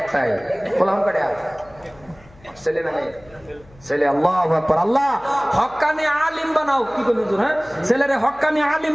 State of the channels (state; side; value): noise; left; hum, 26 dB below the sound